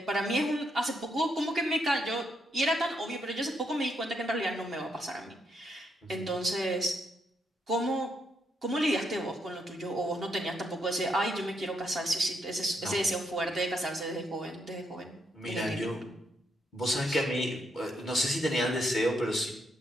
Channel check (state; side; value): normal; both; correlation 0.77